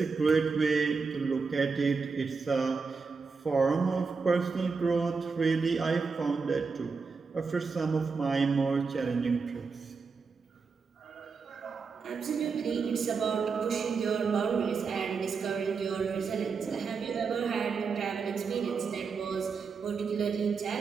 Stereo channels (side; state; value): left; quieter; 5.0 dB